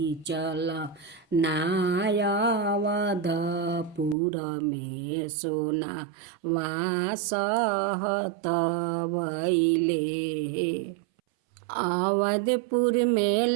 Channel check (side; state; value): left; drops out; at 4.2 s